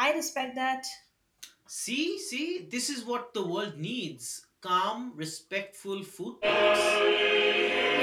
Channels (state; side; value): identical; both; correlation 1.00